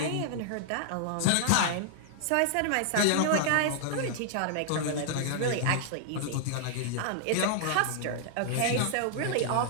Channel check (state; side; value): different; both; correlation 0.00